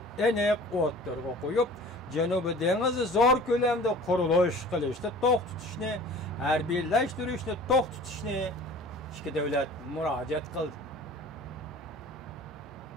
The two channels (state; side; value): normal; both; correlation 0.44